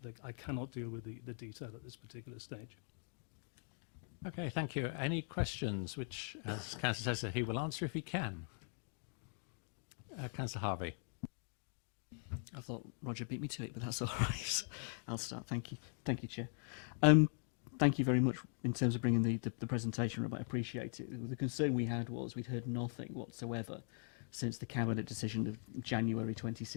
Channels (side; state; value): right; silent; 50 dB below the other